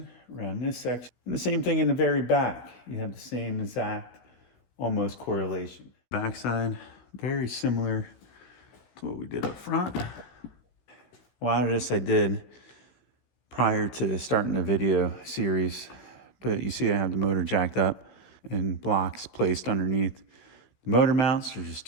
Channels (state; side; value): late; right; 16 ms